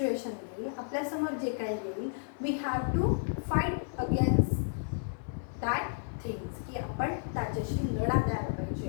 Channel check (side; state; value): right; silent; 56 dB below the other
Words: येईल, आपल्यासमोर जे काही येईल, we have to fight against that things, की आपण त्याच्याशी लढा द्यायला